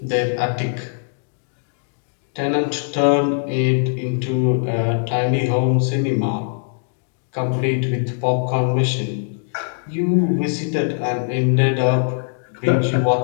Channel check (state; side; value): silent; right; digital silence